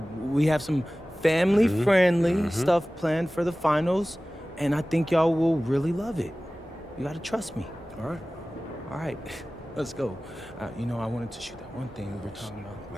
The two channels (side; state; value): both; normal; correlation 0.97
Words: We have some family-friendly stuff planned for the finals, and I think y'all will really love it. You gotta trust me. All right, let's go. I wanted to shoot that one thing we were talking about.